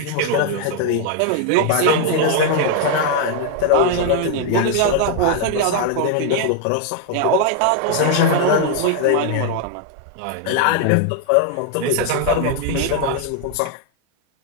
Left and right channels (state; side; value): different; both; correlation 0.00